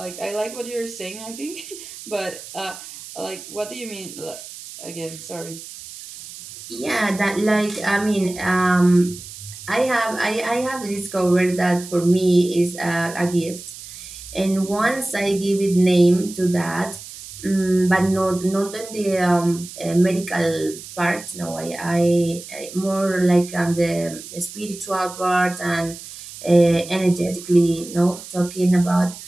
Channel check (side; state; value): right; noise; hiss, 14 dB below the sound